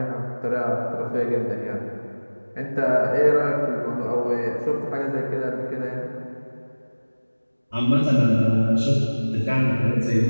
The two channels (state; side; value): inverted; both; correlation -1.00